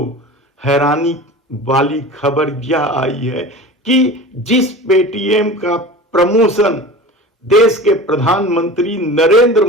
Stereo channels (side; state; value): both; normal; correlation 0.35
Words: हैरानी वाली खबर यह आई है कि जिस पेटीएम का प्रमोशन देश के प्रधानमंत्री नरेंद्र